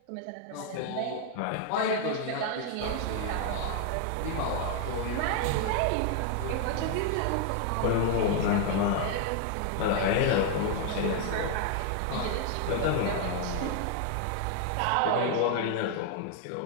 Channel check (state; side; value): different; both; correlation 0.00